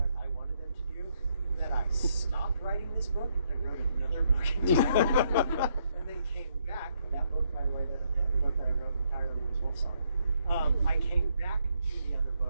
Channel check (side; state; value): both; inverted; correlation -0.74